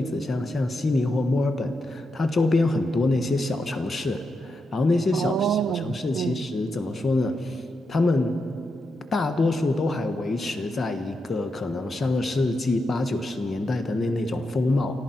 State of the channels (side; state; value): both; normal; correlation 0.85